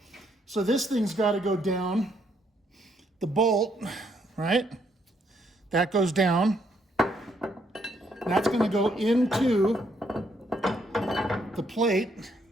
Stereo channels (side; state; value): both; normal; correlation 0.72